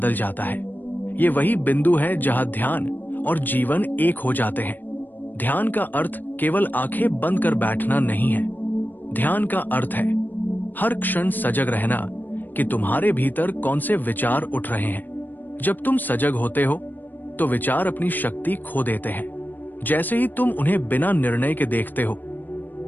जाता है। ये वही बिंदु है जहां ध्यान और जीवन एक हो जाते हैं। ध्यान का अर्थ केवल आंखें बंद कर बैठना नहीं है। ध्यान का अर्थ है हर क्षण सजग रहना कि तुम्हारे भीतर कौन से विचार उठ रहे हैं। जब तुम सजग होते हो तो विचार अपनी शक्ति खो देते हैं। जैसे ही तुम उन्हें बिना निर्णय के देखते हो,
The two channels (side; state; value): right; late; 0.090 ms